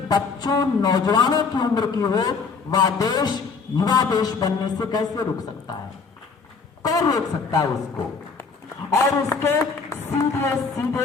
बच्चों नौजवानों की उम्र की हो, वह देश युवा देश बनने से कैसे रुक सकता है? कौन रोक सकता है उसको? और उसके सीधे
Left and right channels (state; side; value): quieter; right; 4.8 dB